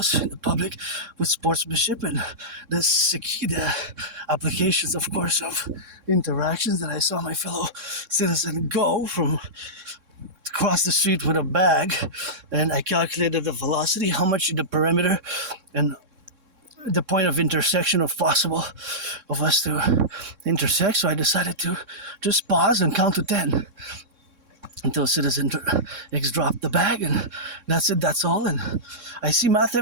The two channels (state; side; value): late; left; 3.6 ms